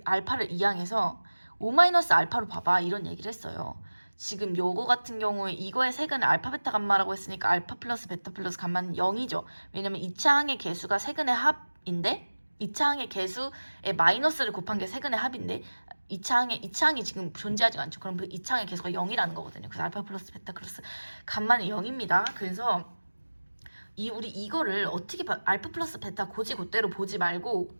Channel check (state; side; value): inverted; both; correlation -1.00